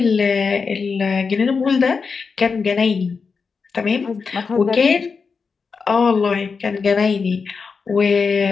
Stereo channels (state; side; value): quieter; right; 5.2 dB